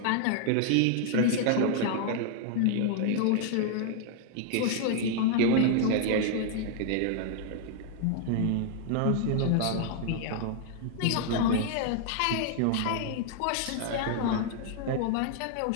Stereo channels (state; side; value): different; both; correlation 0.00